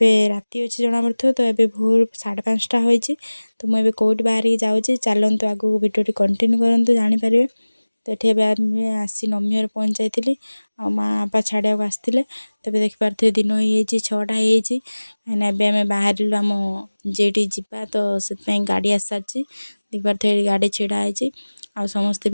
राति अच्छे जना पड़ो तो ये भोर 5:30 होती तो मुझे कौट बाहर जाऊँगी चलतु आगू भिडियो कंटिन्यू करूँ जानीपर। तो ये आसी नमी घर पहुँच जाइली आ माँ बापा छाड़ा आसते तब देखिपे दिन हो 6टा होमें बाहर आम जेटी जावा तो से गाड़ी आस सारी देखिपे गाड़ी छिड़ाई आ समस्ते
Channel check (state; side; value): inverted; both; correlation -1.00